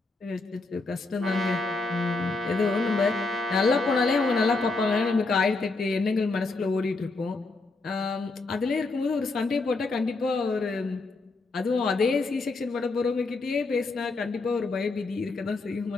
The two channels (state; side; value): quieter; right; 3.6 dB